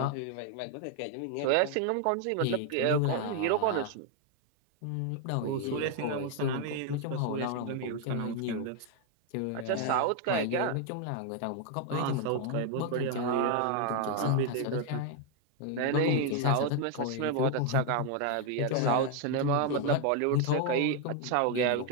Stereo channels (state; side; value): different; both; correlation 0.01